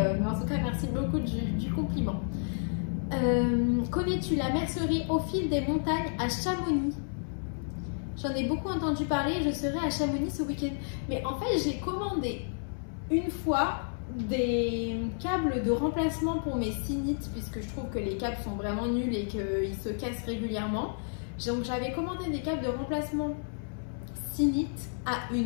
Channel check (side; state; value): right; silent; 57 dB below the other